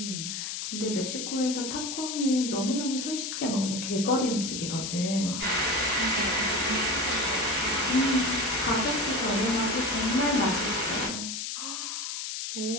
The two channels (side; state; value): left; noise; hiss, 4 dB below the sound